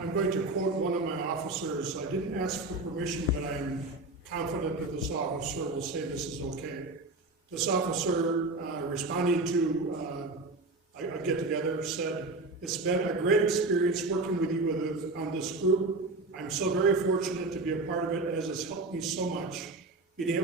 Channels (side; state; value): left; quieter; 3.1 dB